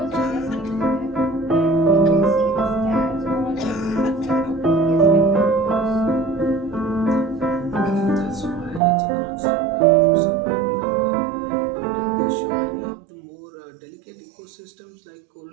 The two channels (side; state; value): left; drops out; at 8.8 s